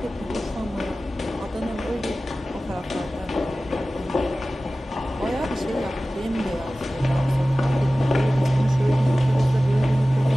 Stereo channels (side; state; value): both; normal; correlation 0.96